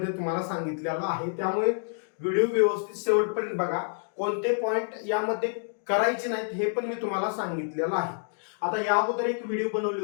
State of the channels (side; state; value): right; silent; digital silence